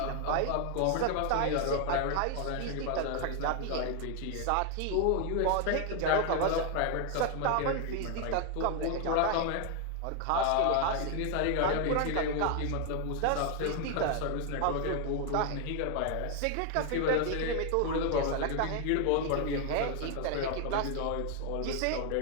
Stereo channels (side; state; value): both; different; correlation 0.00